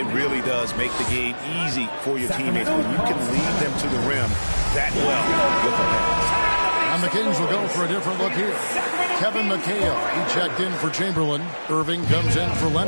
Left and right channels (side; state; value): both; inverted; correlation -1.00